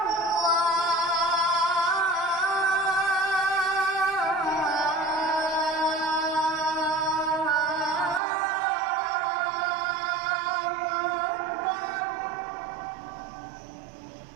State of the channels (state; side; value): drops out; left; at 8.2 s